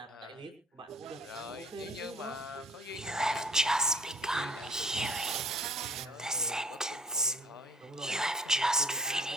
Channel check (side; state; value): both; normal; correlation 0.55